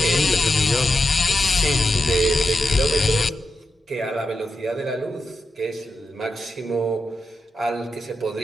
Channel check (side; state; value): both; normal; correlation 0.89